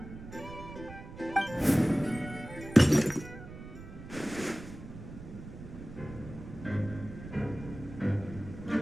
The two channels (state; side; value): noise; right; rumble, 13 dB below the sound